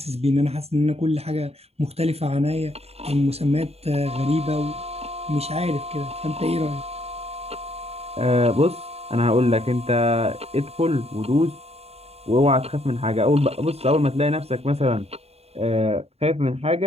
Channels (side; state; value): left; late; 0.30 ms